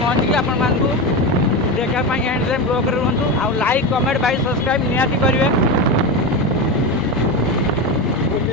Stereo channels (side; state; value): both; normal; correlation 0.18